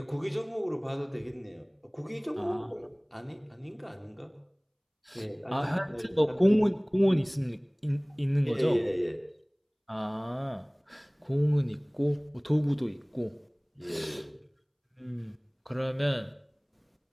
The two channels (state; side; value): identical; both; correlation 1.00